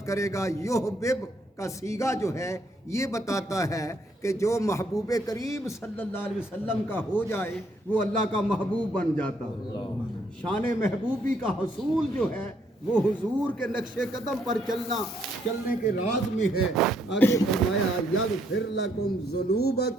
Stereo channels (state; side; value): normal; both; correlation 0.71